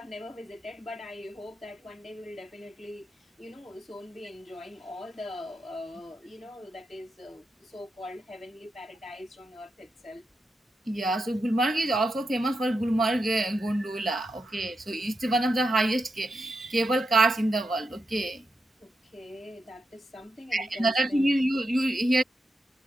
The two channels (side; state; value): both; normal; correlation 0.87